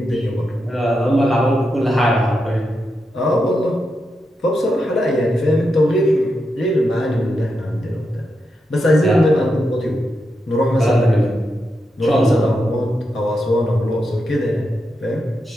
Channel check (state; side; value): normal; both; correlation 0.86